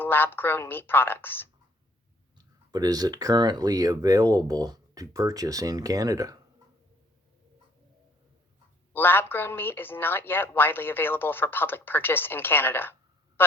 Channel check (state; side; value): normal; both; correlation 0.62